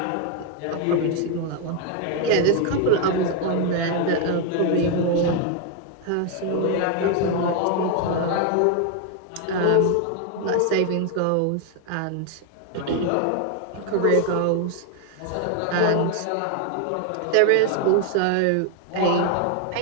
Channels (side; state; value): both; different; correlation 0.01